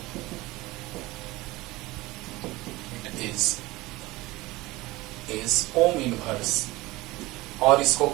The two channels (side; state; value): left; quieter; 20.2 dB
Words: ohm inverse, और इसको